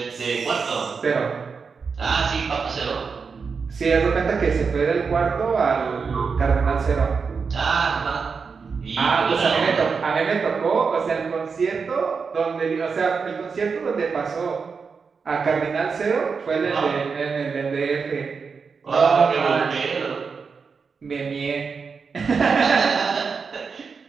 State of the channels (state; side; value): quieter; left; 5.4 dB